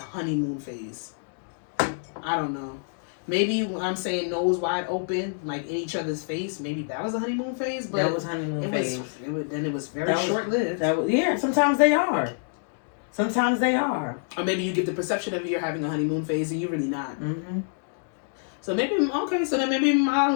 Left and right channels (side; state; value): right; silent; digital silence